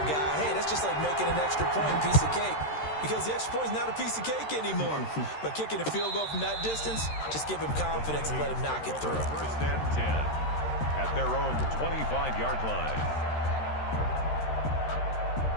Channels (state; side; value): late; right; 13 ms